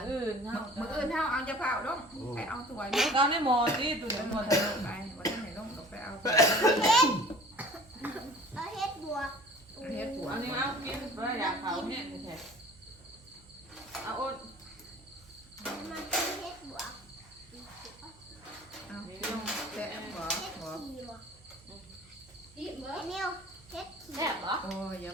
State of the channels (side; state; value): right; noise; hum, 25 dB below the sound